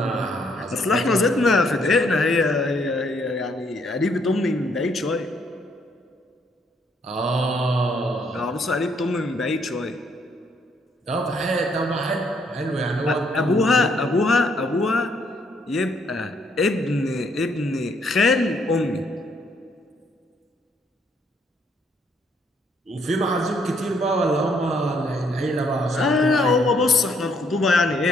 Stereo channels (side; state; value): both; normal; correlation 0.69